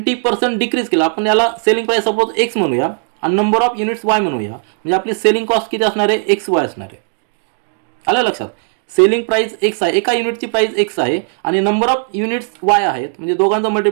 डिक्रीज केलं, आपण याला सेलिंग प्राइस सपोज एक्स म्हणूया आणि नंबर ऑफ युनिट्स वाय म्हणूया, म्हणजे आपली सेलिंग कॉस्ट किती असणार आहे, एक्स वाय असणार आहे. आलं लक्षात? सेलिंग प्राइस एक्स आहे, एका युनिटची प्राइस एक्स आहे आणि नंबर ऑफ युनिट्स वाय आहेत, म्हणजे दोघांचं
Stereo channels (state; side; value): silent; left; digital silence